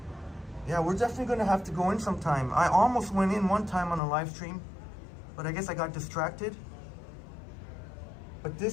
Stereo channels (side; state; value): right; drops out; at 4.0 s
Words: Yeah, we're definitely gonna have to go in sometime. I almost went in one time on a live stream, but I guess I got distracted. But